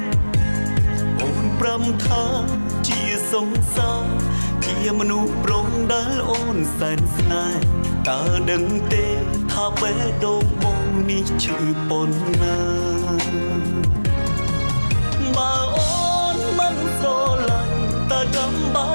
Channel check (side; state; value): both; inverted; correlation -1.00